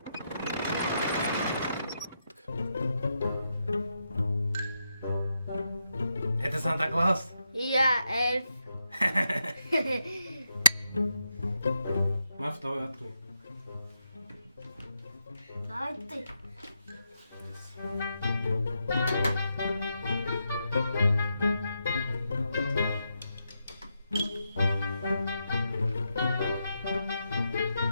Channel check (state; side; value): inverted; both; correlation -0.83